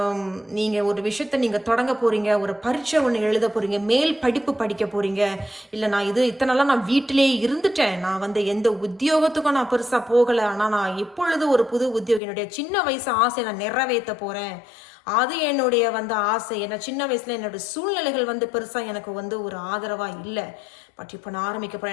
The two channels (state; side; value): drops out; right; at 12.2 s